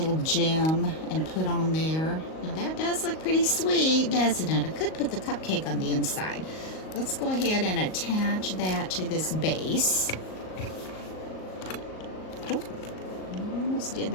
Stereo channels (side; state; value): right; late; 38 ms